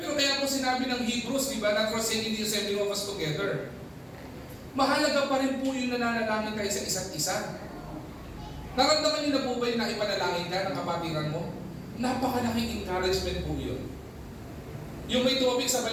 kaya po sinabi ng Hebrews, di ba, not forsaking the assembling of us together. Mahalaga pa rin po yung nananalangin tayo sa isa't isa. Naramdaman niyo na po ba yung naipanalangin ka ng kapatiran mo? Napakalaking encouragement po yun. Yung may tumabik sa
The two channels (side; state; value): both; identical; correlation 1.00